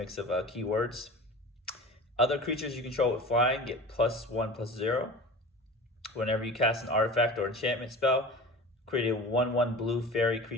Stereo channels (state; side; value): normal; both; correlation 0.36